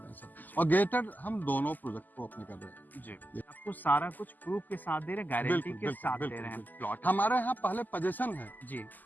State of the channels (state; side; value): late; right; 0.085 ms